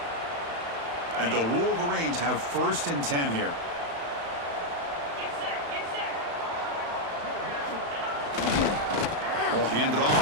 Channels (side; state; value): left; late; 35 ms